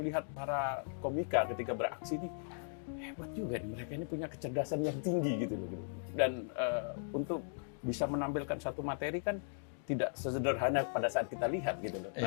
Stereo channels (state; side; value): silent; right; digital silence